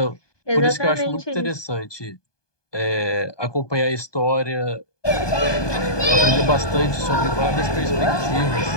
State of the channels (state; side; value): late; right; 1.2 ms